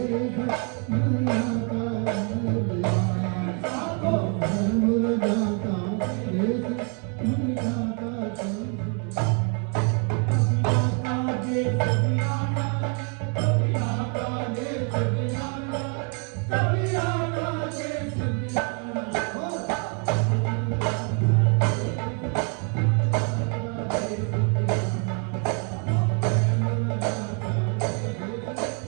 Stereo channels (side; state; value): left; quieter; 35.8 dB